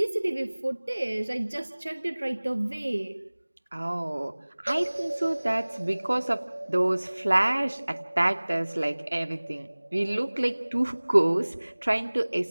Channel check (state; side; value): inverted; both; correlation -1.00